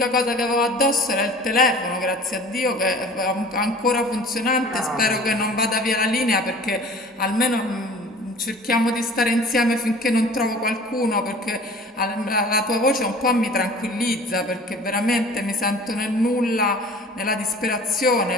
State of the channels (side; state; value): both; normal; correlation 0.44